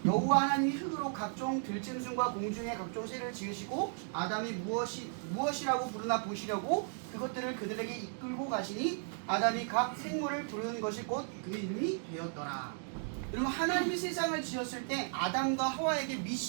여호와 하나님이 흙으로 각종 들짐승과 공중의 각종 새를 지으시고 아담이 무엇이라고 부르나 보시려고 그것들을 그들에게 이끌고 가시니 아담이 각 생물을 부르는 것이 곧 그 이름이 되었더라. 여러분, 하나님이 세상을 지었을 때 아담과 하와에게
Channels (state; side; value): silent; left; 54 dB below the other